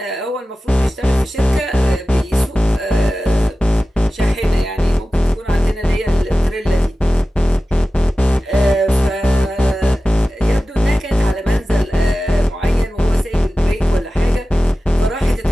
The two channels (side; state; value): both; normal; correlation 0.95